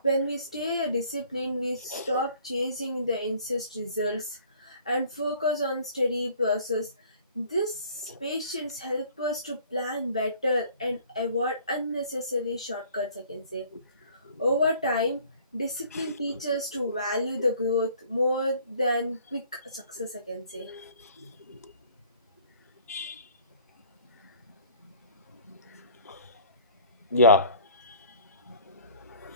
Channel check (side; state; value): both; inverted; correlation -0.54